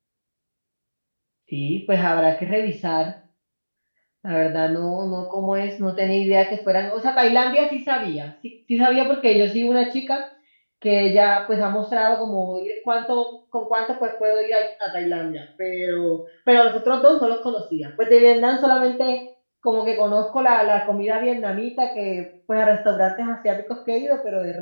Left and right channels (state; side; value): inverted; both; correlation -1.00